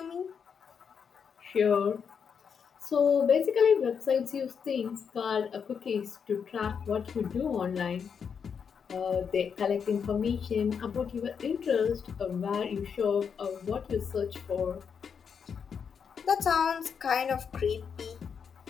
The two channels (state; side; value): quieter; right; 6.7 dB